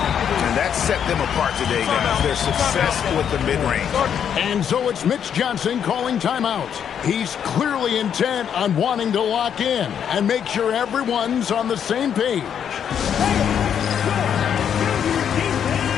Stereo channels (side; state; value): right; quieter; 8.4 dB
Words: that set them apart today, guys. Their success with the mid-range. And so it's Mitch Johnson calling timeout. He's clearly intent on wanting to lock in and make sure everyone's on the same page.